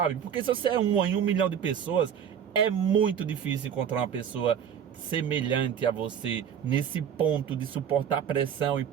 Porque se você é uma em 1 milhão de pessoas, é muito difícil encontrar uma pessoa semelhante a você nesse ponto de suportar pressão e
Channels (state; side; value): quieter; left; 8.5 dB